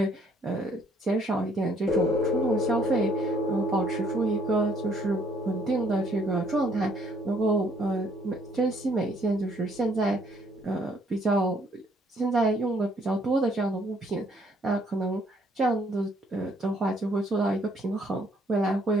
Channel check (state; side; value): normal; both; correlation 0.65